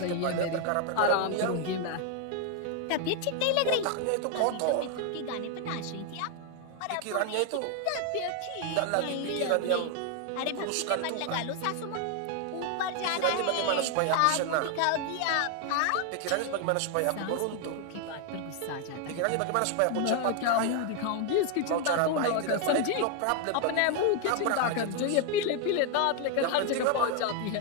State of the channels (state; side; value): different; both; correlation 0.00